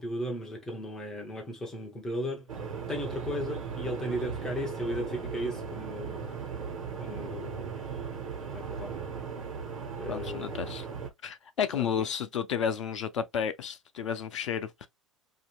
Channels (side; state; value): both; normal; correlation 0.35